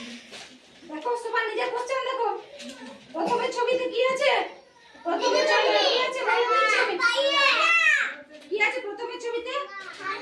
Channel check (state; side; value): identical; both; correlation 1.00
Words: দেখো সবাই নিজের কোশ্চেন দেখো। প্রথমের ছবিতে কি আছে? প্রথমের ছবিতে কি আছে? কি আছে প্রথমের ছবিতে?